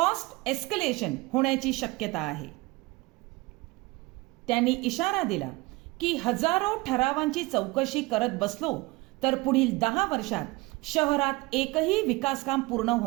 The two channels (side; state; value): left; quieter; 23.2 dB